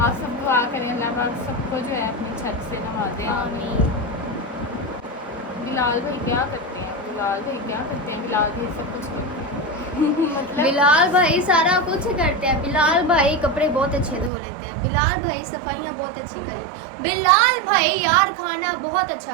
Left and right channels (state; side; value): drops out; left; at 14.3 s